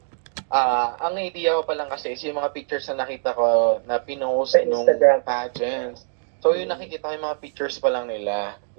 ang idea ko pa lang kasi is yung mga pictures na nakita ko na pinost Sa nung Instagram. pageants. So yung nakikita ko yung mga pictures pa lang nila.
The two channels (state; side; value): silent; left; digital silence